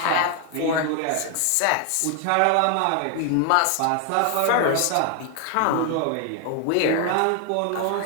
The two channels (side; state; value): both; different; correlation 0.01